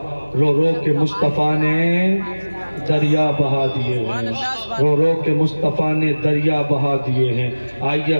رو رو کے مصطفیٰ نے دریا بہا دیے ہیں، رو رو کے مصطفیٰ نے دریا بہا دیے ہیں۔ آئیے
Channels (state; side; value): inverted; both; correlation -1.00